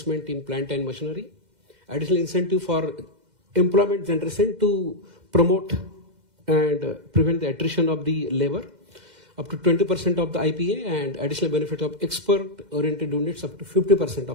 in plant and machinery, additional incentive for employment generation to promote and prevent the attrition of the labor, up to 20% of the IPA, and additional benefit of export-oriented units up to 50%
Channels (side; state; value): left; late; 2.1 ms